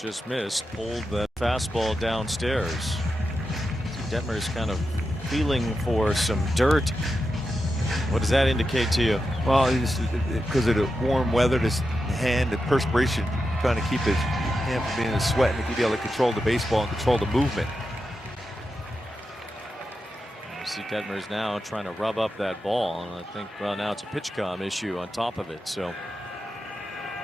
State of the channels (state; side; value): normal; both; correlation 0.89